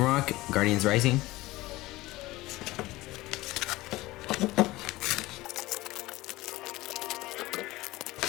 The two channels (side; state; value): right; quieter; 18.9 dB